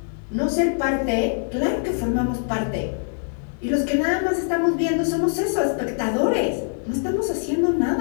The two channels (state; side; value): silent; right; digital silence